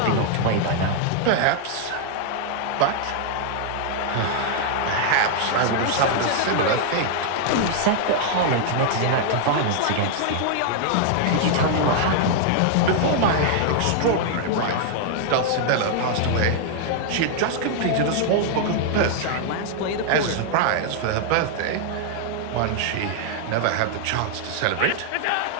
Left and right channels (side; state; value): both; different; correlation 0.00